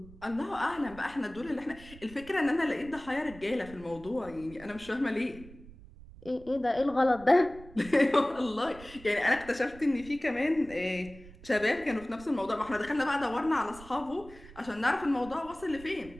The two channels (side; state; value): right; noise; rumble, 19 dB below the sound